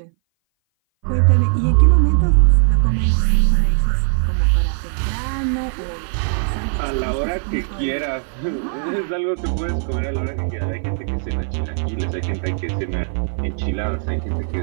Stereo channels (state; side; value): silent; left; 59 dB below the other